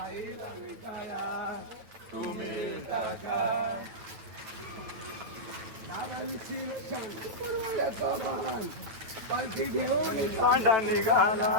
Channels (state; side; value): late; left; 9.1 ms